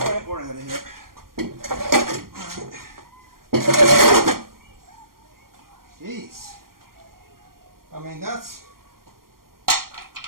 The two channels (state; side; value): late; left; 0.92 ms